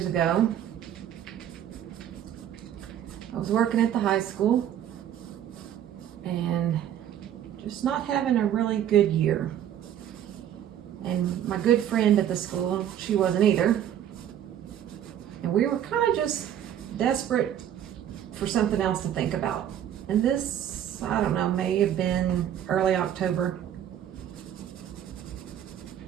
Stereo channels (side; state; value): left; quieter; 10.4 dB